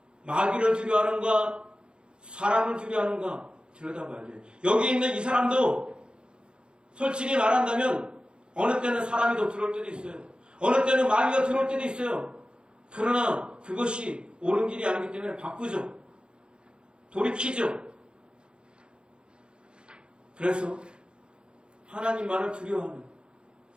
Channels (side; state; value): left; late; 0.052 ms